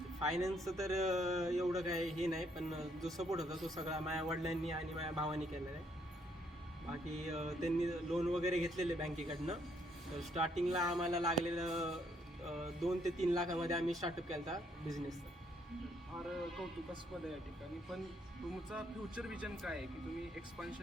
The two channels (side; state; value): both; normal; correlation 0.70